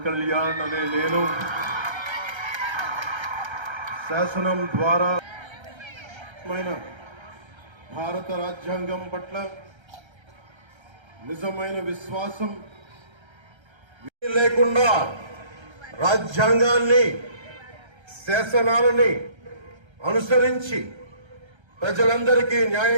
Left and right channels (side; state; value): left; late; 1.3 ms